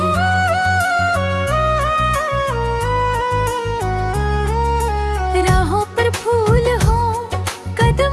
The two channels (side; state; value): both; identical; correlation 1.00